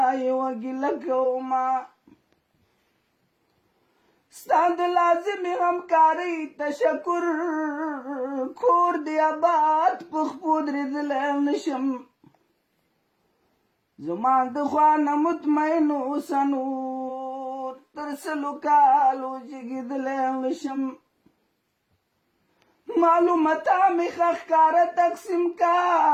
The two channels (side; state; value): both; identical; correlation 1.00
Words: یوه ګیله کومه ستا د لازمې همکارۍ تشکر کور دې آباد په خپو درېدلی نشم زما د خوا نه مطمئن اوسه نور تر سلو کالو جګېدلی نشم معلوماته مې ښه ښکاره تقسیم کا